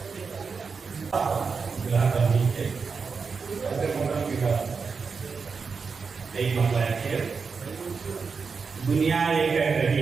दुनिया ये कह रही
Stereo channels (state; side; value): quieter; left; 5.2 dB